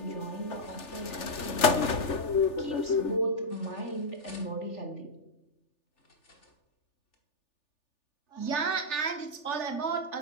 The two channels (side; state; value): right; late; 3.4 ms